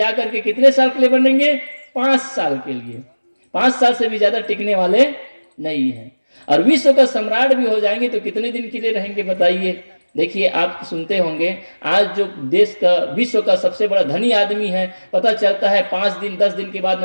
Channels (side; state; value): both; inverted; correlation -1.00